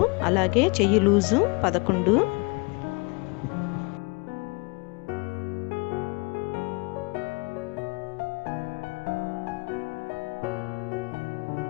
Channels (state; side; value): quieter; right; 29.6 dB